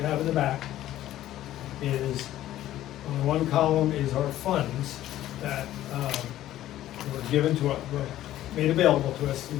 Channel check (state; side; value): quieter; right; 13.6 dB